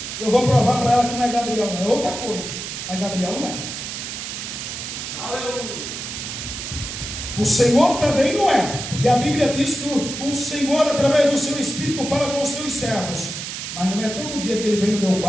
Eu vou provar para ela que não é Gabriel, não é outra coisa. Mas Gabriel não é. Aleluia. O Senhor também não é, porque a Bíblia diz que o Senhor, através do seu Espírito, fala com os seus servos. Mas não é todo dia que ele vem no meu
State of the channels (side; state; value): right; noise; hiss, 7 dB below the sound